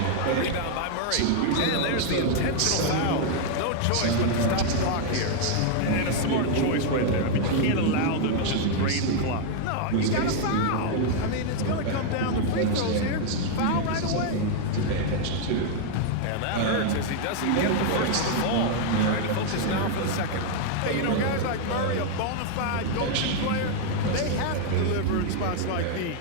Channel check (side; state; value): both; different; correlation 0.00